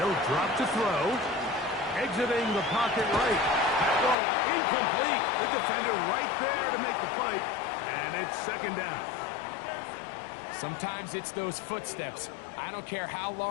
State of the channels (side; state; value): right; drops out; at 4.2 s